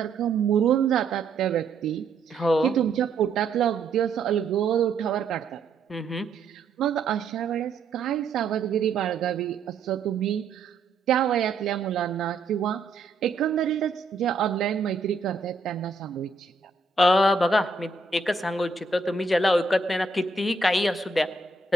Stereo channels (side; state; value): left; quieter; 3.9 dB